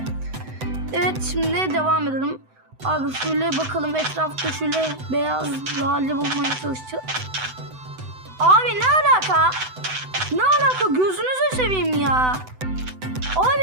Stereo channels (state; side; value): late; left; 7.9 ms